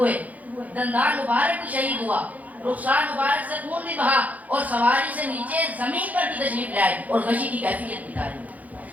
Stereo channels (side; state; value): left; late; 0.076 ms